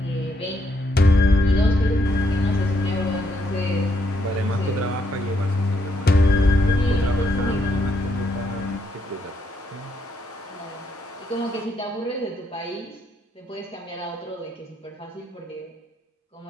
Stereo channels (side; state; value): both; normal; correlation 0.76